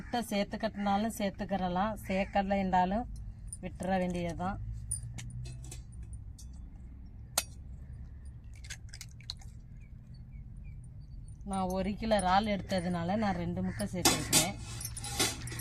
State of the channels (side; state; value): both; identical; correlation 1.00